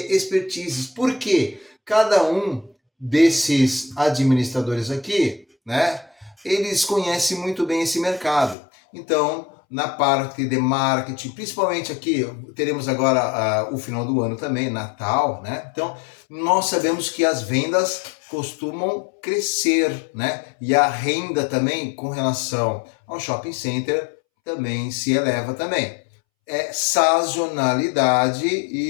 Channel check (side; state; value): right; drops out; at 8.6 s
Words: expertises. Porque cada um desses administradores aqui, né, eles conhecem muito bem esse mercado. Então, na parte de marketing, principalmente aqui, teremos agora o final do ano também, Natal, né? Então, nós sabemos que as vendas costumam crescer, né? E a renda também, com relação ao shopping center, também se eleva também. É sazonalidade